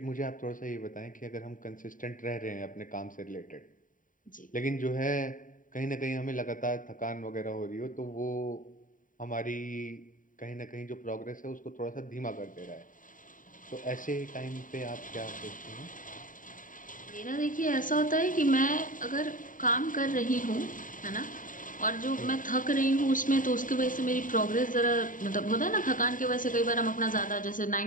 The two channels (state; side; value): late; right; 0.39 ms